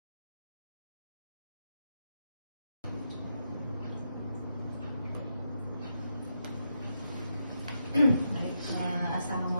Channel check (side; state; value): both; inverted; correlation -0.83